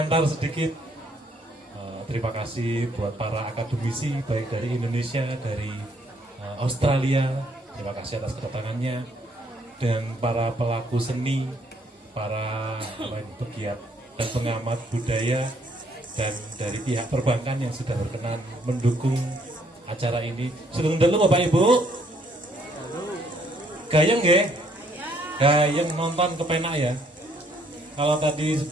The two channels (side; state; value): both; normal; correlation 0.67